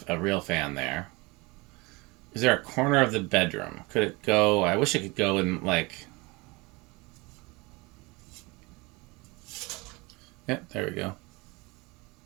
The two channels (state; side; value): quieter; left; 25.2 dB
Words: real fan there. Is there a corner of the bedroom? Could it go? I wish it could go in like... Yep, there we go.